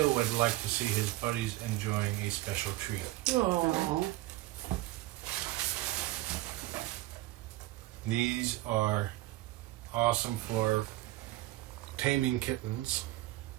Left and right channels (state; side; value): quieter; left; 17.4 dB